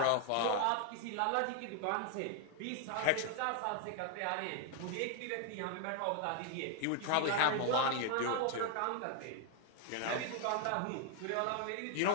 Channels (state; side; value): different; both; correlation 0.00